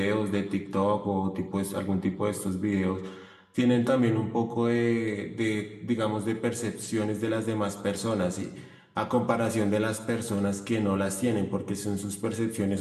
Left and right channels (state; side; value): identical; both; correlation 1.00